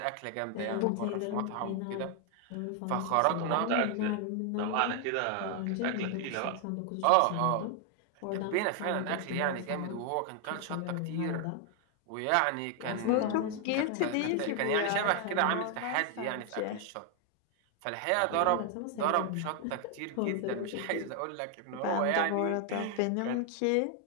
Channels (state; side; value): different; both; correlation 0.00